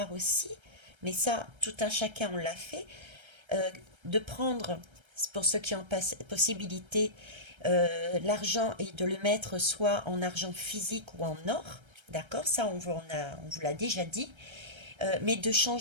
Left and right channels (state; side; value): late; left; 1.3 ms